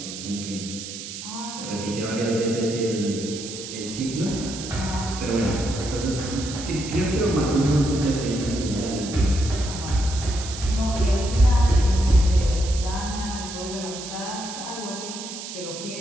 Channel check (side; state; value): right; noise; hiss, 9 dB below the sound